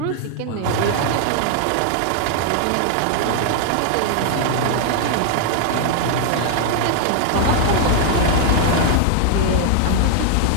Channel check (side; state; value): both; different; correlation 0.00